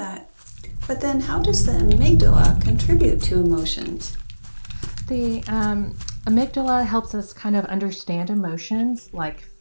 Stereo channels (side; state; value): both; inverted; correlation -1.00